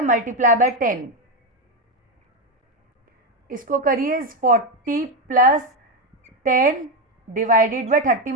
मल्टीप्लाई बाय 10, इसको करिए 40 plus 10 divided by 30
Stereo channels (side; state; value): both; normal; correlation 0.09